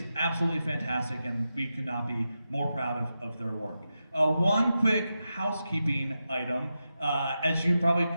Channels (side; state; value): both; inverted; correlation -0.90